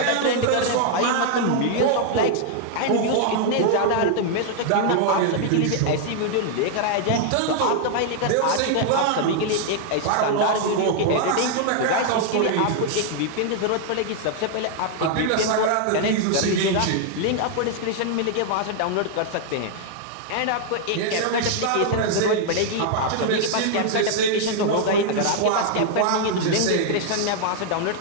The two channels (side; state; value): both; different; correlation 0.00